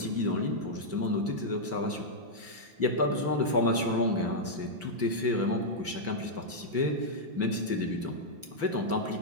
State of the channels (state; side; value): late; left; 5.8 ms